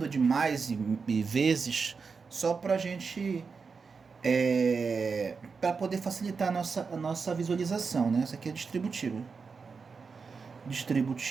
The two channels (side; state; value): left; quieter; 5.1 dB